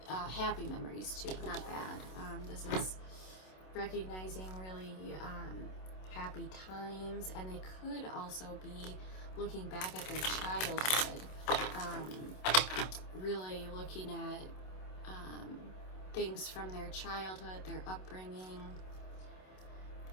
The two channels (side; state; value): right; late; 27 ms